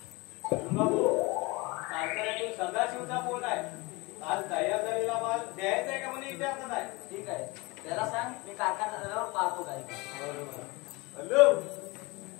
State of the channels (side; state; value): right; quieter; 25.0 dB